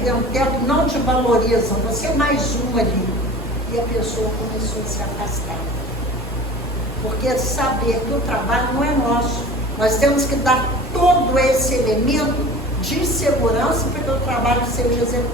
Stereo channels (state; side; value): normal; both; correlation 0.40